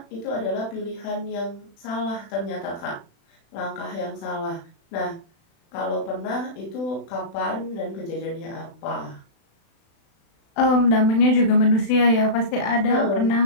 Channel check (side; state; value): right; late; 36 ms